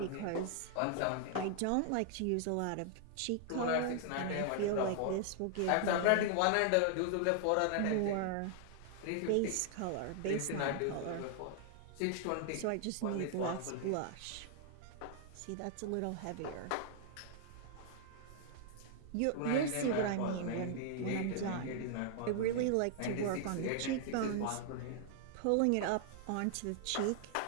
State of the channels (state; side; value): different; both; correlation 0.00